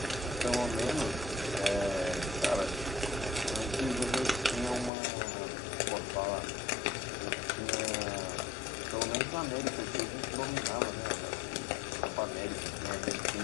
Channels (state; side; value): drops out; right; at 4.9 s